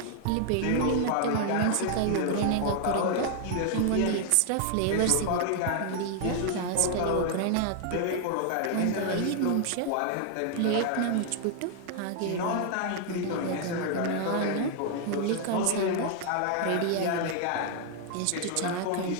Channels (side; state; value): both; different; correlation 0.00